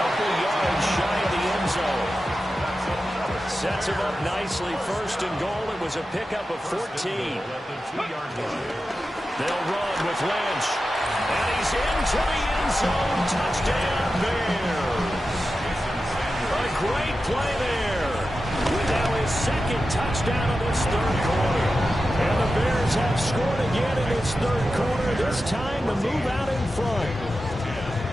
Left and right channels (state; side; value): normal; both; correlation 0.92